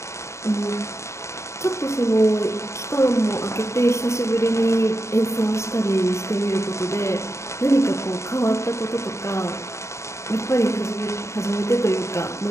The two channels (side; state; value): right; late; 0.14 ms